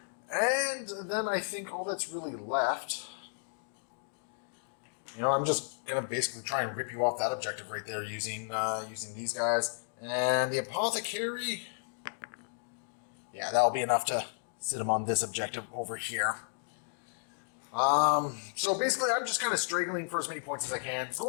And then I think all that's really left You know, I'm just gonna basically try and rip you off that objective right there using using these guys. And the apothecary, yeah, that'll be enough to sit him on this objective over here. So basically, I'm just kind of straggling for as many points as I can.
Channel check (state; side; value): silent; right; digital silence